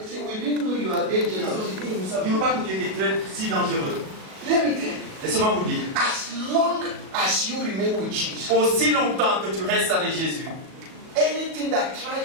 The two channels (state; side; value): late; left; 37 ms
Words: said, we didn't know you are dangerous. Nous ne savions pas que tu étais si dangereux. Let me tell you, Laissez-moi vous dire. as long as you remain with Jesus, Aussi longtemps que tu restes avec Jésus, anything that tries